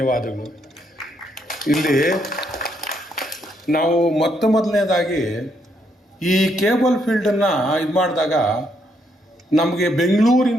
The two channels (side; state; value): both; normal; correlation 0.74